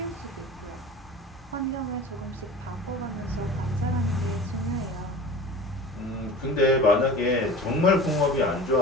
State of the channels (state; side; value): normal; both; correlation 0.37